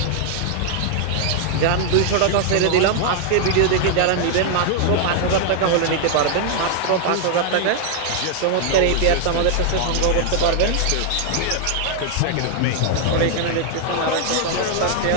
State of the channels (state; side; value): different; both; correlation 0.00